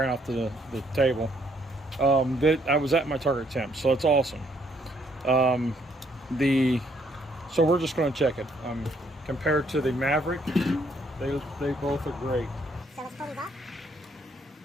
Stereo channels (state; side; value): normal; both; correlation 0.69